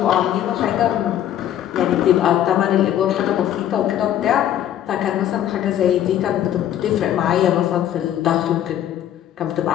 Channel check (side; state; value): right; quieter; 11.2 dB